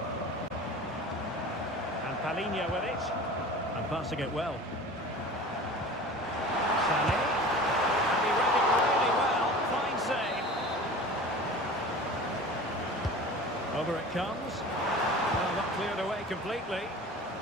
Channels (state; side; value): normal; both; correlation 0.38